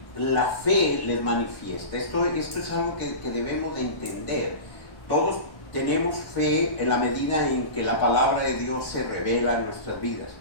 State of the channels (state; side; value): late; right; 1.1 ms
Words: la fe les manifiesta. Esto es algo que debemos de entender. Todos tenemos fe en la medida en que la palabra de Dios se revela en nuestras vidas.